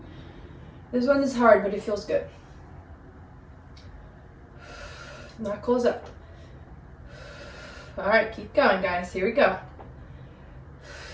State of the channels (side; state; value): both; identical; correlation 1.00